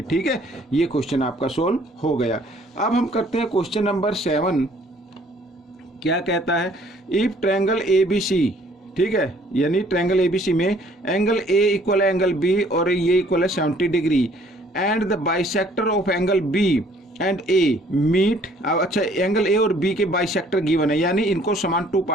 ठीक है, ये क्वेश्चन आपका सोल्व हो गया। अब हम करते हैं क्वेश्चन नंबर 7। क्या कहता है, if triangle A B C, ठीक है, यानी ट्रायंगल एबीसी में एंगल ए इक्वल है एंगल बी और ये इक्वल है 70 degree, and the bisector of angle B and A meet. अच्छा, एंगल ए और बी के बाइसेक्टर गिवन है, यानी इनको समान टू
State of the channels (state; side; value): normal; both; correlation 0.59